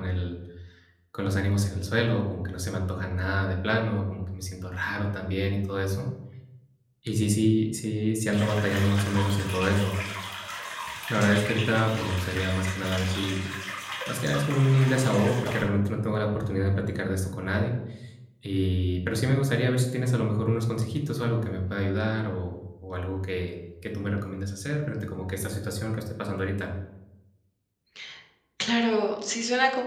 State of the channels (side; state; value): both; identical; correlation 1.00